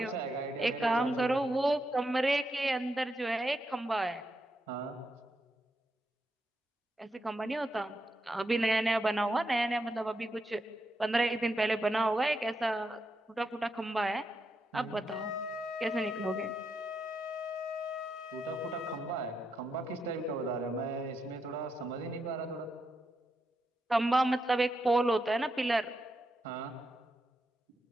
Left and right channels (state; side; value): normal; both; correlation 0.83